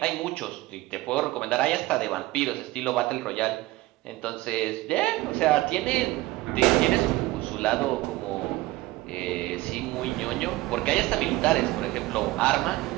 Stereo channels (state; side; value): quieter; left; 18.6 dB